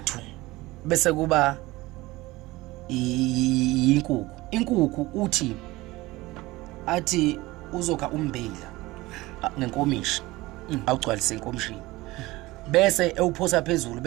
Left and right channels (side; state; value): left; quieter; 19.8 dB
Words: bese kuba inkukhu uthi athi uzokha umbila ngenkomishi awugcwalise inkomishini bese ewuphosa phezulu